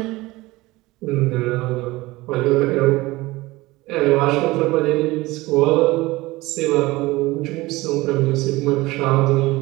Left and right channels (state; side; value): quieter; left; 20.2 dB